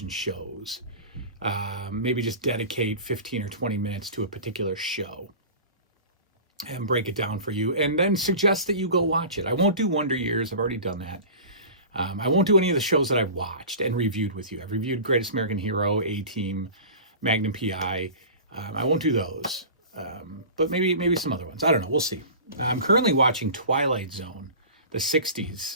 shows. Maybe just dedicate 15 or 20 minutes to a particular show and break it down for you, and then suggest that you go watch it. I won't do Wonder Years. I've already done that. I won't do any of the shows that I've watched and reviewed with you. I've reviewed Greatest American Hero, A-Team, Magnum PI. I won't do those, but maybe some other ones. I don't know. We'll see. I'm currently watching Twilight Zone, the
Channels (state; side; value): inverted; both; correlation -0.36